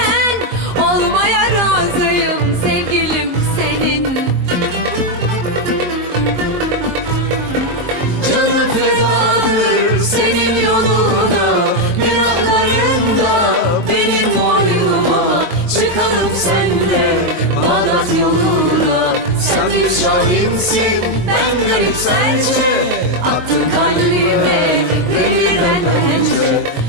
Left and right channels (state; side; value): late; left; 22 ms